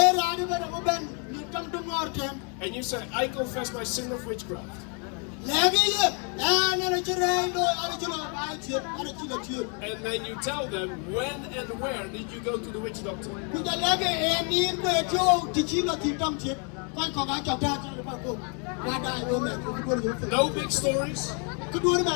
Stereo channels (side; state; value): right; quieter; 37.8 dB